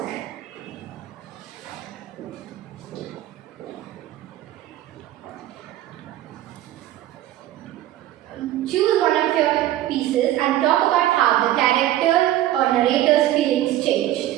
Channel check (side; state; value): left; quieter; 13.9 dB